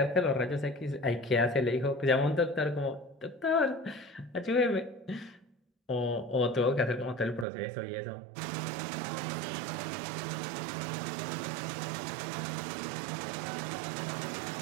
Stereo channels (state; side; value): drops out; left; at 7.5 s